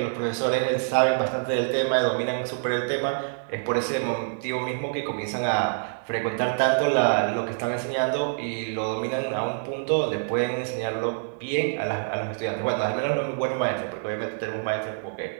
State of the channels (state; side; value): silent; left; digital silence